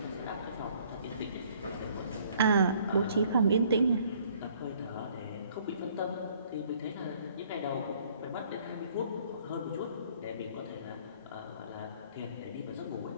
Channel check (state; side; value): inverted; both; correlation -0.60